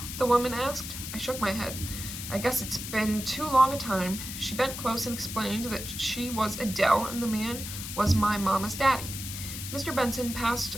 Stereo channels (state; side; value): noise; left; hiss, 8 dB below the sound